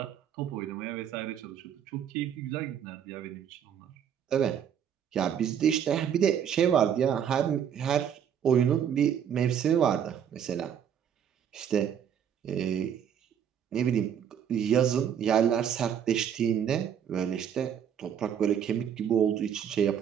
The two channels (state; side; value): quieter; left; 8.7 dB